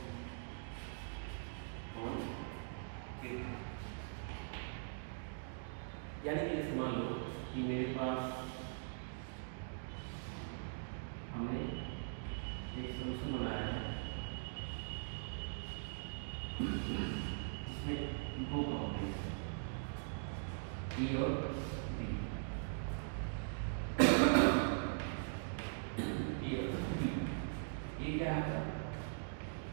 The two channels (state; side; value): silent; left; digital silence